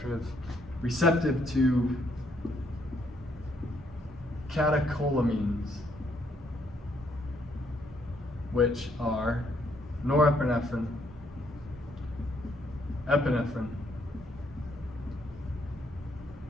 to catecholamines, which are norepinephrine, epinephrine,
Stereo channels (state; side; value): normal; both; correlation 0.71